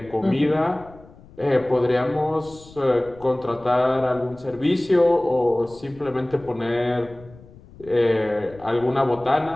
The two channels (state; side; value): noise; left; rumble, 22 dB below the sound